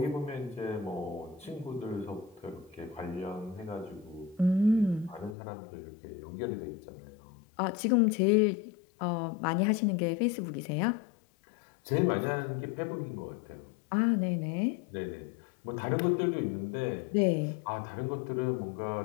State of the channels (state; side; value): drops out; right; at 5.4 s